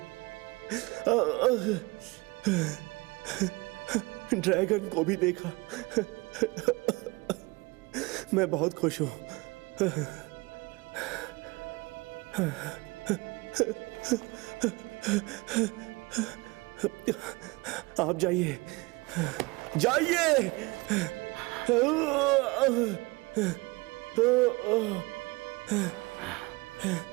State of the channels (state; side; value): quieter; left; 24.6 dB